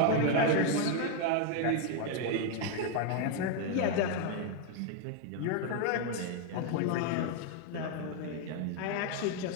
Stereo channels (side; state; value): both; different; correlation 0.01